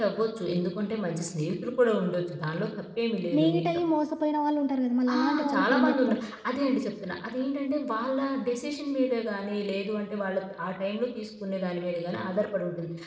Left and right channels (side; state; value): both; identical; correlation 1.00